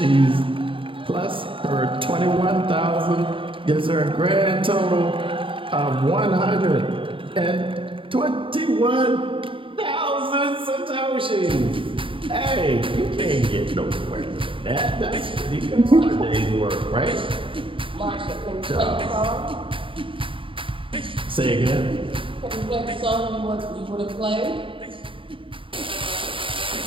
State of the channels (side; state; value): left; late; 0.25 ms